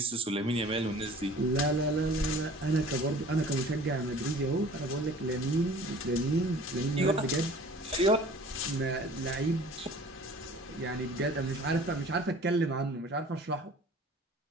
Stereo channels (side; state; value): both; normal; correlation 0.47